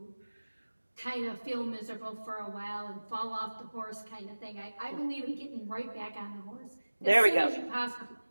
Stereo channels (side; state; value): both; inverted; correlation -1.00